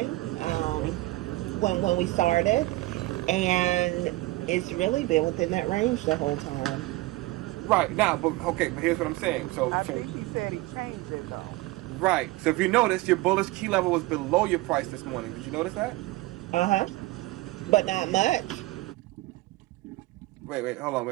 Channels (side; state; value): left; quieter; 19.8 dB